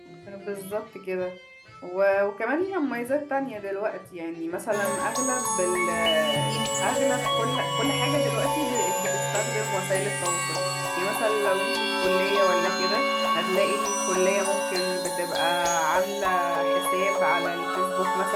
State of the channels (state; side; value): identical; both; correlation 1.00